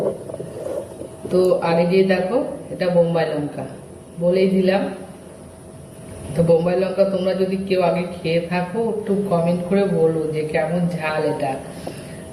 তো আর এই যে দেখো, এটা বোম্বাই লঙ্কা বলেই দিলাম। তো বোম্বাই লঙ্কা তোমরা যদি কেউ আগে খেয়ে থাকো একটু কমেন্ট করে বলো যে কেমন ঝাল এটা।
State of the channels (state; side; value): identical; both; correlation 1.00